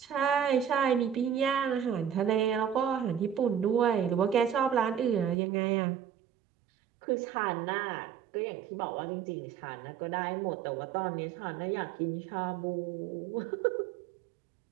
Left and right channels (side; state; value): left; drops out; at 5.4 s